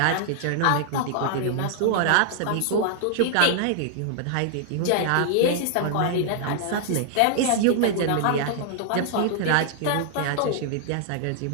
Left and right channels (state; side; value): different; both; correlation -0.01